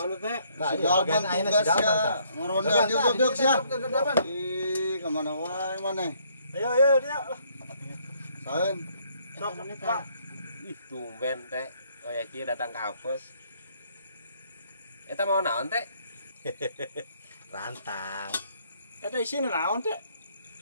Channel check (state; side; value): inverted; both; correlation -0.67